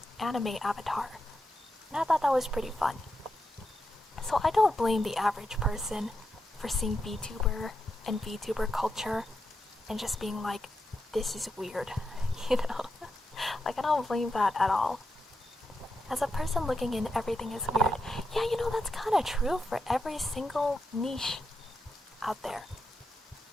anime avatar. And I thought that was pretty fun. So I don't blame the average person for seeing VTuber and VTuber culture and just being like, this is weird, Like, I don't blame that at all. As a person looking in, everything is weird. Yeah, that's kind of true for every single niche out there,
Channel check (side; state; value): both; normal; correlation 0.86